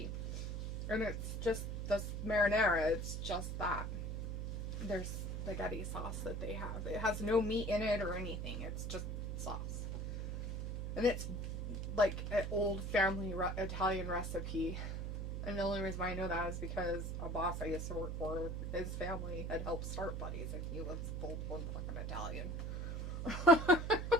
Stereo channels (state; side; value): noise; right; hum, 3 dB below the sound